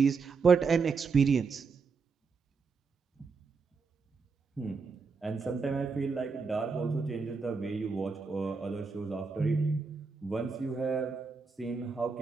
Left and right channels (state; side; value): quieter; left; 4.9 dB